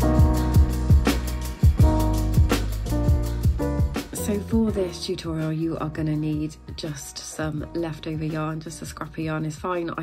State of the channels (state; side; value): identical; both; correlation 1.00